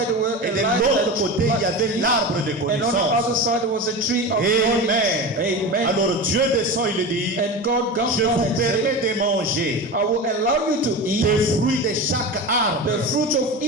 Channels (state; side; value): normal; both; correlation 0.27